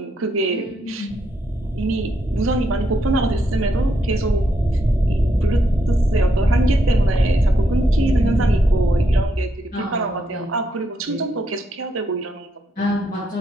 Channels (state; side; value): normal; both; correlation 0.78